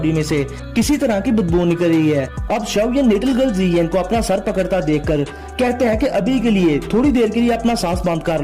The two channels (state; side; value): identical; both; correlation 1.00